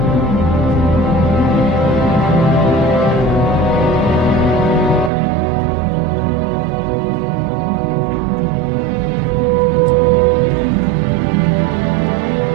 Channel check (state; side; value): drops out; left; at 5.1 s